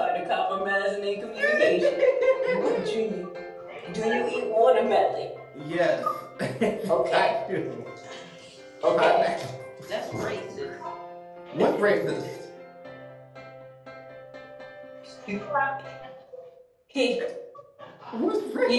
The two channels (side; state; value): both; identical; correlation 1.00